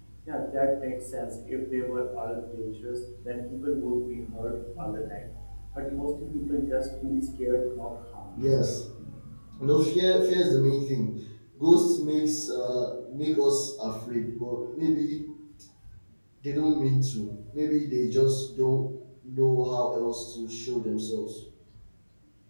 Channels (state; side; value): inverted; both; correlation -1.00